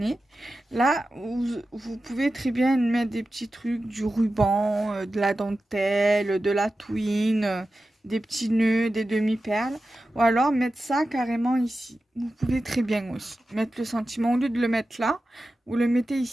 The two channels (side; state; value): both; normal; correlation 0.93